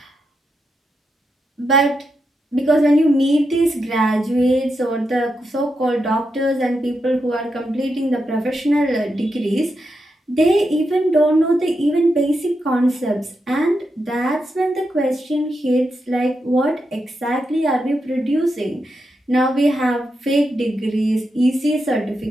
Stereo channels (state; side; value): normal; both; correlation 0.85